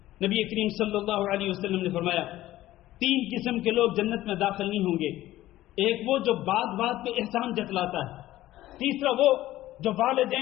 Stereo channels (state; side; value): quieter; right; 15.2 dB